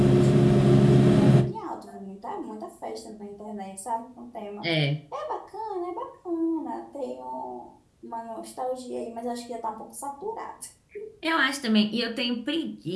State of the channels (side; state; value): both; identical; correlation 1.00